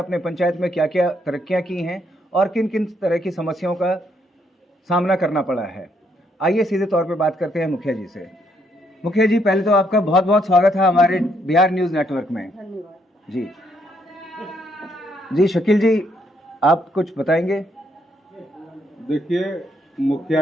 पंचायत में क्या क्या तरक्कियां की हैं और किन किन तरह की समस्याओं का सामना करना पड़ा है। आइए सीधे तौर पे बात करते हैं मुखिया जी से। मुखिया जी, पहले तो आपका बहुत बहुत स्वागत है हमारे बिहार न्यूज़ नेटवर्क में। धन्यवाद जी जी, शकील जी, आप कुछ बताएंगे? देखिए,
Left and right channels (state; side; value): normal; both; correlation 0.73